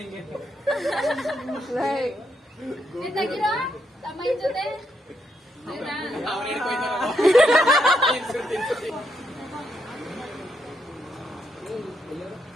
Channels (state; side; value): normal; both; correlation 0.79